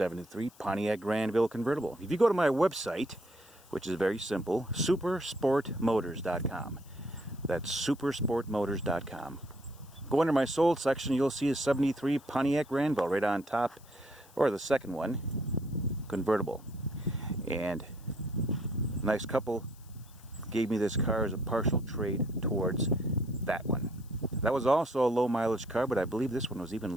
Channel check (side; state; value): left; noise; hiss, 26 dB below the sound